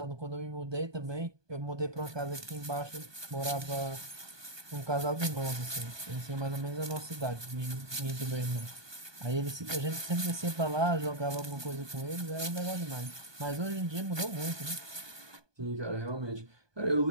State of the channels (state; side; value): late; left; 1.2 ms